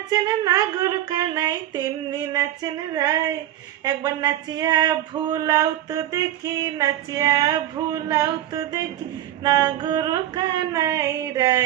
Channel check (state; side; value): quieter; left; 12.9 dB